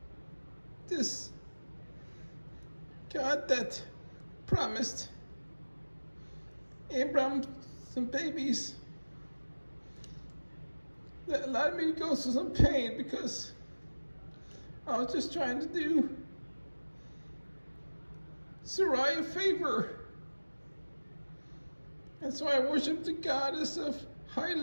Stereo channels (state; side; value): inverted; both; correlation -1.00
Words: this God that promised Abram some babies that allowed me to go through some pain because I was just trying to do Sarai a favor. And so I worshiped the goddess of